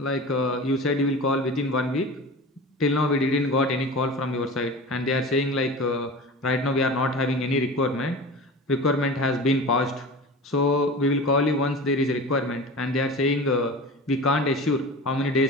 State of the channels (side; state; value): both; normal; correlation 0.33